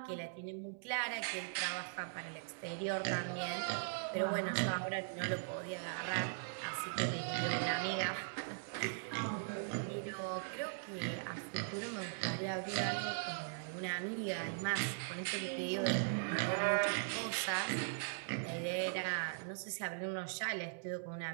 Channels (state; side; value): silent; left; digital silence